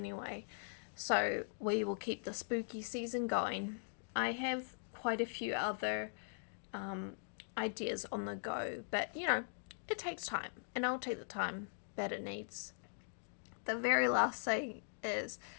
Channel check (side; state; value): right; silent; digital silence